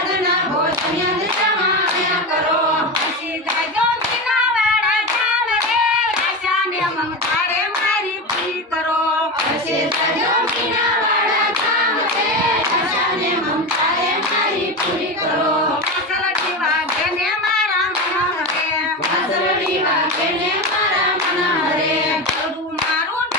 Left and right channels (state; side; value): normal; both; correlation 0.20